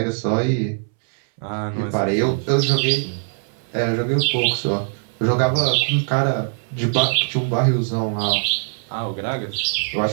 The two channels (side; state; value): left; silent; 65 dB below the other